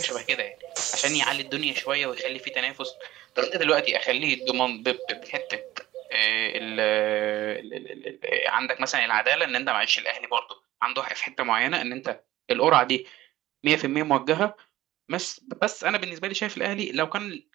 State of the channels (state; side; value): quieter; left; 15.5 dB